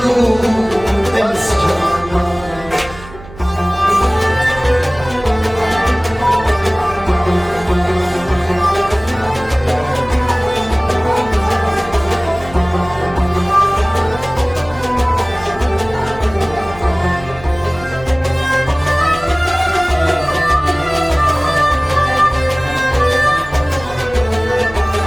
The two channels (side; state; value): right; noise; hum, 17 dB below the sound